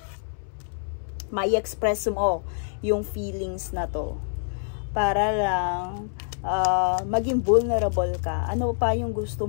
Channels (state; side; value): silent; right; 61 dB below the other